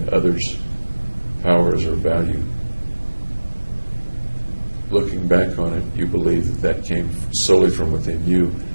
others' powers or value, looking back on it, you believe that came solely from within you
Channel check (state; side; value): inverted; both; correlation -1.00